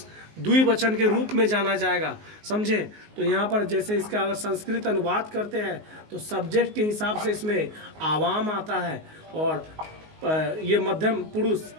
द्विवचन के रूप में जाना जाएगा, समझे। तो यहाँ पर जैसे इसका अगर संस्कृत अनुवाद करते हैं तो सब्जेक्ट के हिसाब से इसमें आवाम आता है, और ये मध्यम पुरुष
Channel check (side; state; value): left; late; 19 ms